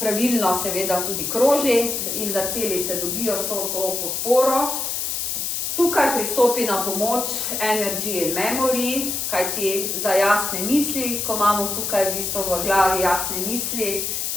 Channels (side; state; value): left; noise; hiss, 2 dB below the sound